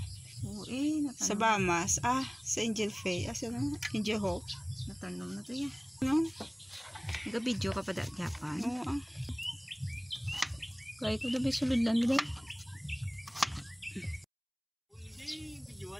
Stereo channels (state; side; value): identical; both; correlation 1.00